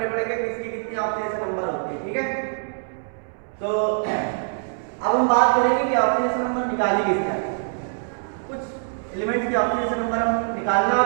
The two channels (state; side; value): silent; left; 63 dB below the other